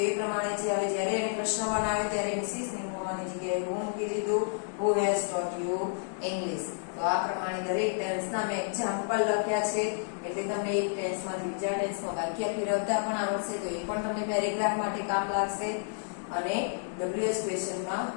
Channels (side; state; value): right; silent; digital silence